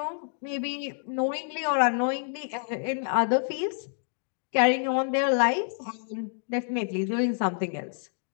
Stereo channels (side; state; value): right; silent; 59 dB below the other